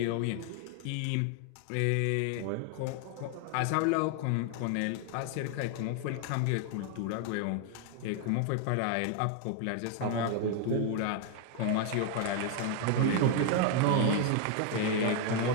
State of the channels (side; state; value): both; different; correlation 0.01